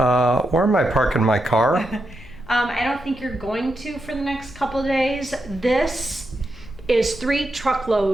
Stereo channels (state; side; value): noise; left; rumble, 19 dB below the sound